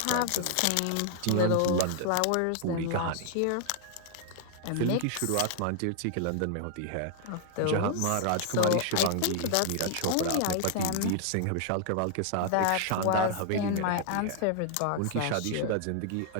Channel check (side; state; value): both; different; correlation 0.00